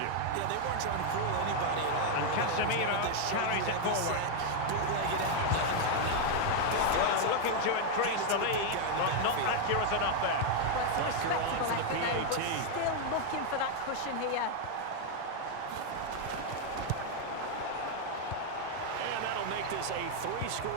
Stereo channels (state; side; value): different; both; correlation 0.00